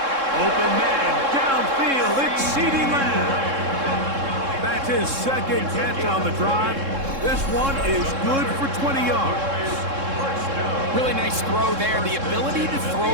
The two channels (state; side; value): late; left; 3.7 ms